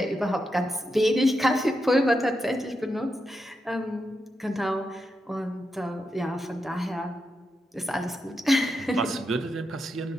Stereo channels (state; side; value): normal; both; correlation 0.86